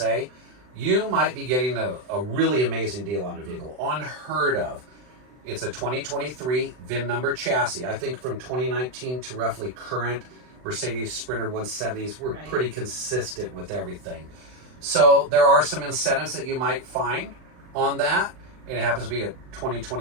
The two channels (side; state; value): left; late; 39 ms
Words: you might be getting a really amazing deal on a vehicle, unheard of. It's a 2023 VIN number chassis. I think from 2019 to roughly current Mercedes Sprinter 170s, we're pretty consistent with everything. So there are some incentives that you might find on that, and it happens to be a